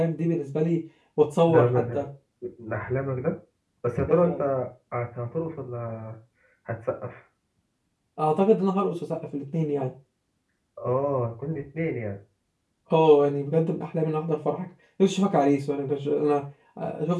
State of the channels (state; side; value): identical; both; correlation 1.00